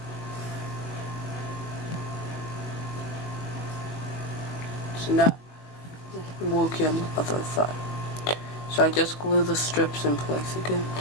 strips, and now working on the other side. So I just glue the strips in place again,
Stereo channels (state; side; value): late; right; 20 ms